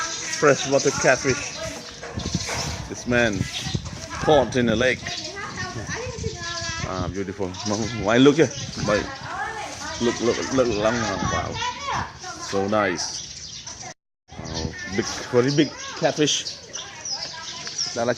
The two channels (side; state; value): both; identical; correlation 1.00